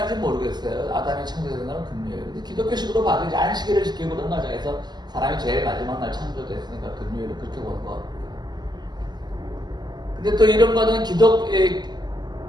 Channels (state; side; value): late; left; 0.21 ms